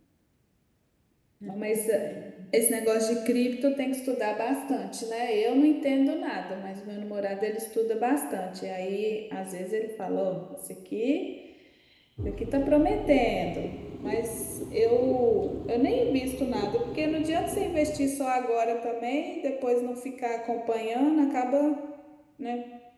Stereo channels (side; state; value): both; identical; correlation 1.00